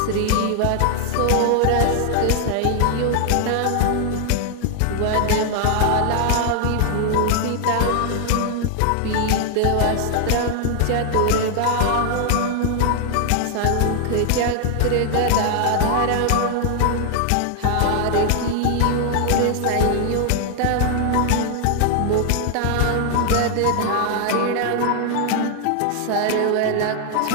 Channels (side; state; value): both; different; correlation 0.00